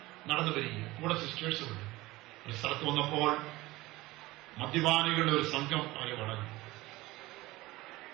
നടന്നു വരികയും കൂടെ സിസ്റ്റേഴ്സുമുണ്ട്. ഒരു സ്ഥലത്ത് വന്നപ്പോൾ മദ്യപാനികളുടെ ഒരു സംഘം അവരെ വളഞ്ഞു.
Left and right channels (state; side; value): quieter; left; 19.3 dB